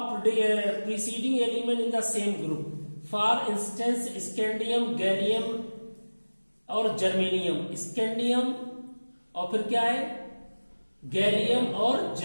preceding element in the same group for instance scandium, gallium और जर्मेनियम। स्कैंडियम और फिर क्या है, गैलियम और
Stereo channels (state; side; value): inverted; both; correlation -1.00